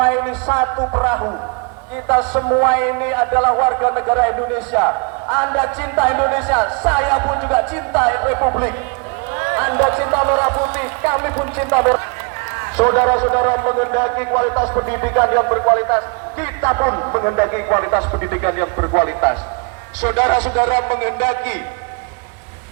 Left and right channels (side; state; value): left; quieter; 33.5 dB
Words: ini satu perahu, kita semua ini adalah warga negara Indonesia. Anda cinta Indonesia, saya pun juga cinta Republik. Anda cinta merah putih, kami pun cinta merah. Saudara-saudara menghendaki kualitas pendidikan yang berkualitas, kita pun menghendaki kualitas pendidikan yang berkualitas. Saudara-saudara menghendaki